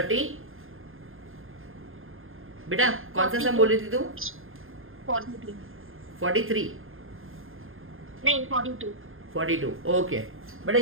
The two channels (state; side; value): late; left; 0.60 ms